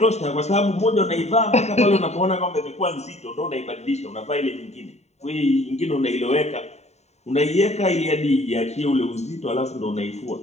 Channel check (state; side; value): late; right; 0.32 ms